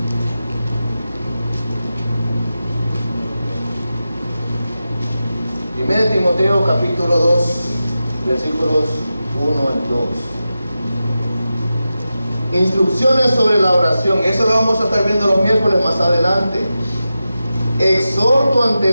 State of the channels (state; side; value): inverted; both; correlation -0.92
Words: Primero Timoteo capítulo 2, versículos 1 al 2. Instrucciones sobre la oración. Eso lo vamos a estar viendo los miércoles más adelante. Exhorto ante